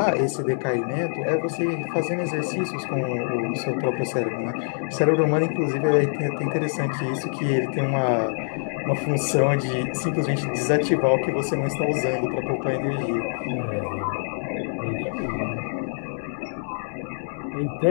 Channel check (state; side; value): silent; right; digital silence